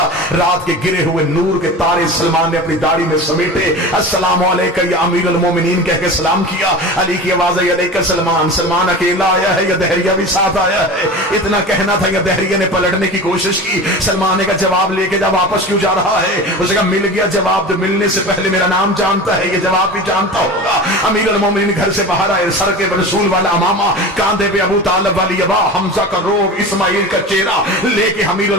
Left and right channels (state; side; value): normal; both; correlation 0.32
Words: رات کے گرے ہوئے نور کے تارے سلمان نے اپنی داڑھی میں سمیٹے. السلام علیکم یا امیر المومنین کہہ کے سلام کیا. علی کی آواز آئی علیکم سلمان. سلمان اکیلا آیا ہے یا دہریہ بھی ساتھ آیا ہے؟ اتنا کہنا تھا یا دہریہ نے پلٹنے کی کوشش کی. سلمان نے کہا جواب لے کے جا، واپس کیوں جا رہا ہے؟ اس نے کہا مل گیا جواب، تو ملنے سے پہلے میرا نام جانتا ہے، یہ جواب بھی جانتا ہوگا. امیر المومنین گھر سے باہر آئے، سر کے رسول والا امامہ، کاندھے پہ ابو طالب والی ابا، حمزہ کا روب، اسماعیل کا چہرہ لے کے امیر